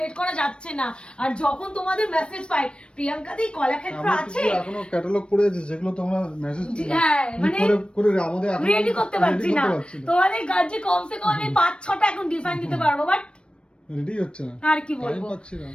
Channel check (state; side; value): late; right; 0.056 ms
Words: করা যাচ্ছে না। আর যখন তোমাদের মেসেজ পাই প্রিয়াঙ্কা দি কলাক্ষেত্র আছে, এখনো ক্যাটালগ পড়ে আছে যেগুলো তোমরা মেসেজ হ্যাঁ মানে করে আমাদের এখন রেডি করতে পারছি না। তোমাদের গাছে কমসে কম আমি 5-6টা এখন ডিজাইন দিতে পারবো, বাট রেডি হচ্ছে না, আর কি বলবো,